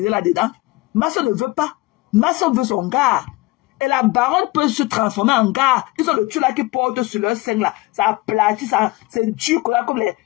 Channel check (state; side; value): quieter; right; 20.9 dB